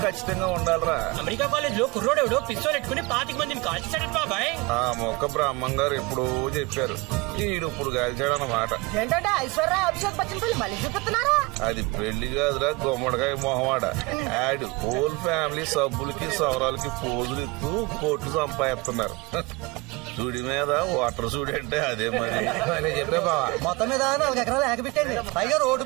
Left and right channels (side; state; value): left; quieter; 24.8 dB